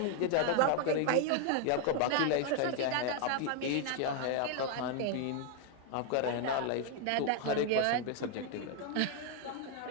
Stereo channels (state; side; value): different; both; correlation 0.00